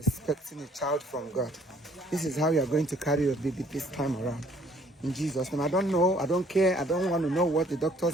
expecting a child from God. This is how you are going to carry your baby this time around. In Jesus' name. I don't know, I don't care, I don't want to know what the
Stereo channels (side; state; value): both; normal; correlation 0.60